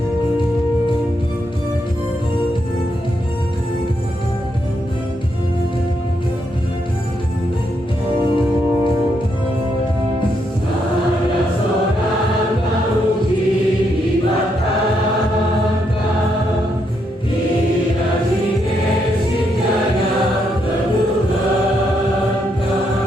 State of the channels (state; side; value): normal; both; correlation 0.78